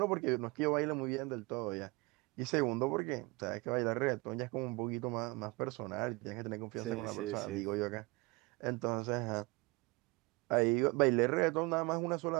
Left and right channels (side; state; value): left; quieter; 25.3 dB